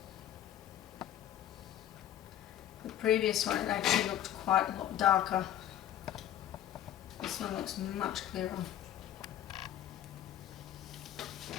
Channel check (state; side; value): quieter; right; 11.7 dB